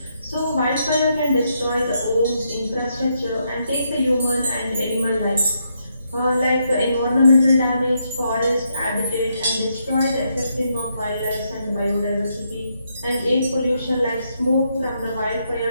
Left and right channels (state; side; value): inverted; both; correlation -0.78